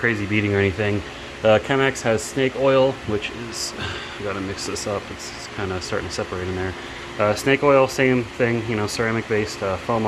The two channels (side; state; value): both; identical; correlation 1.00